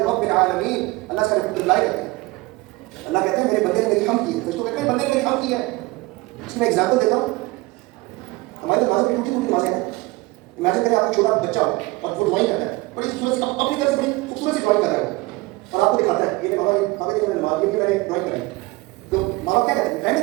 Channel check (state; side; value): quieter; left; 22.3 dB